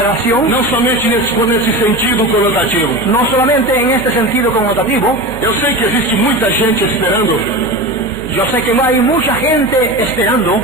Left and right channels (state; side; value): noise; right; hum, 14 dB below the sound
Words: não somente nesse sentido conotativo. no solamente en este sentido connotativo. Eu sei que existe muita gente esperando Yo sé que hay mucha gente esperando